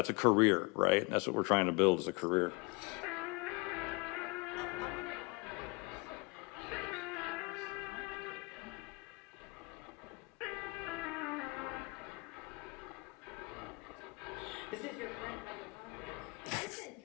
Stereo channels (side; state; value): right; quieter; 27.1 dB